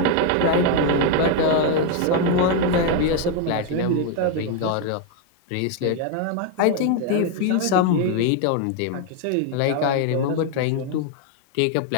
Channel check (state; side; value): different; both; correlation 0.01